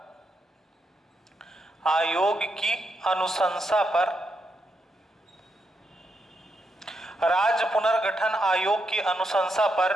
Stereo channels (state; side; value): normal; both; correlation 0.82